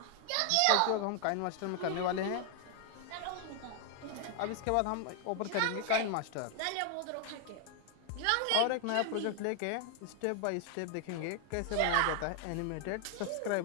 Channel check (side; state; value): both; different; correlation 0.00